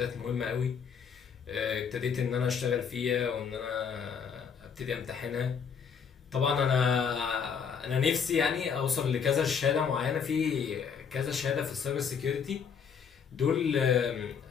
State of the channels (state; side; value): quieter; right; 6.7 dB